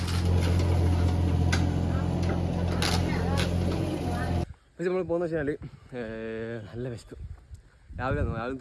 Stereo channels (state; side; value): identical; both; correlation 1.00